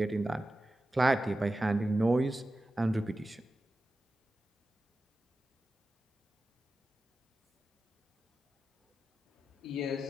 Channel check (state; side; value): normal; both; correlation 0.93